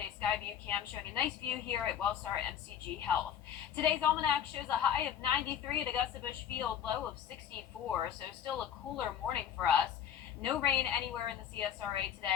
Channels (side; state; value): right; quieter; 9.4 dB